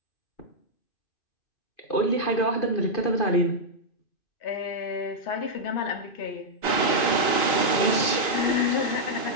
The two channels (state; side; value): late; right; 2.5 ms